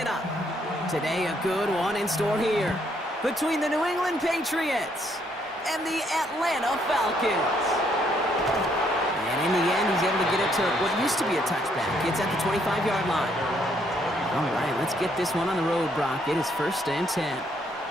Today, a good one in store here between the New England Patriots and the Atlanta Falcons. And in the end, he's able to get it to what used to be a touchback. It's at the 25-yard line. All right, let's get this one on the road, Brock. It is 1st and 10.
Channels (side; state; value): both; normal; correlation 0.70